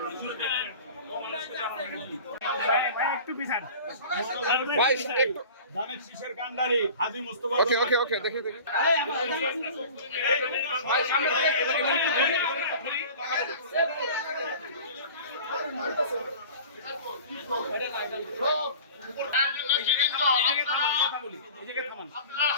জুড়ে দেন। একটু পিছান ধানের শীষের কান্ডারি হাজী মুস্তফা। ওকে দেখি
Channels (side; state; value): both; inverted; correlation -0.40